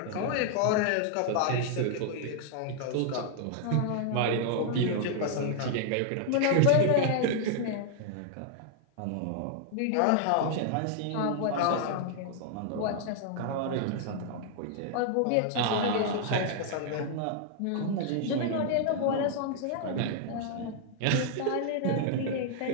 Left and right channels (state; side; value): different; both; correlation -0.01